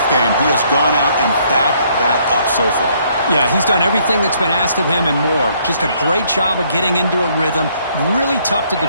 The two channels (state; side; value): inverted; both; correlation -0.67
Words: game. He has gone out and backed that up so far. Yeah, he's done everything that's been asked of him and more. Just a great job of getting into a rhythm. Really tough to